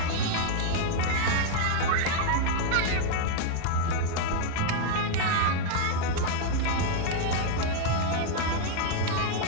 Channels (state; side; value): different; both; correlation 0.00